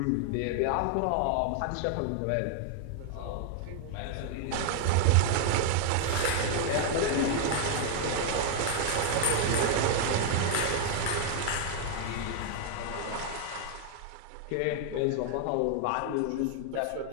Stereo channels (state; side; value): different; both; correlation 0.00